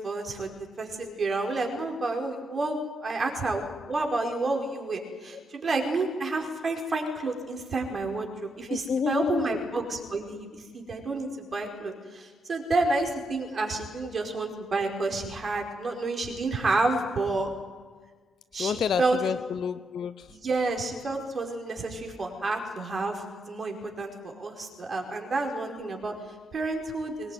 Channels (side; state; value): both; normal; correlation 0.81